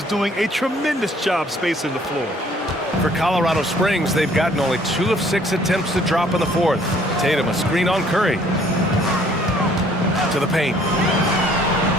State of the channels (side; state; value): both; normal; correlation 0.60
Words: doing a tremendous job spacing the floor. For Colorado Springs, they've gotten only 2 of 6 attempts to drop in the fourth. Tatum, a screen on Curry. To the paint.